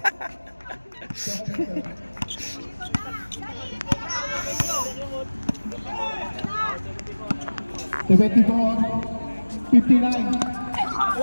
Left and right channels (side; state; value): both; inverted; correlation -1.00